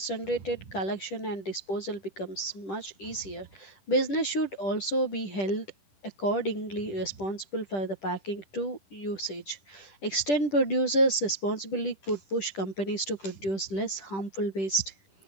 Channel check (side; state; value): right; late; 10 ms